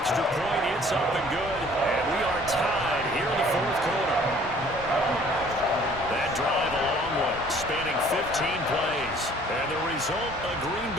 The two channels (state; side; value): normal; both; correlation 0.55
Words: point. It's up and good. And we are tied here in the fourth quarter. That drive a long one, spanning 15 plays. And the result, a Green